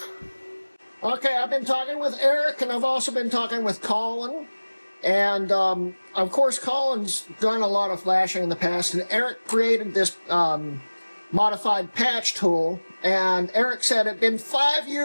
Okay, I've been talking with Eric, and I've also been talking with Colin. And, of course, Colin's done a lot of flashing in the past, and Eric created this modified patch tool. And Eric said it'd been 5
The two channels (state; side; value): inverted; both; correlation -1.00